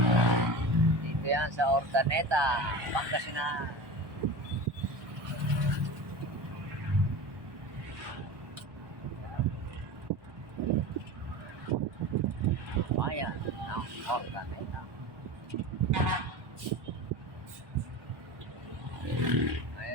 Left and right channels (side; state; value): left; late; 1.2 ms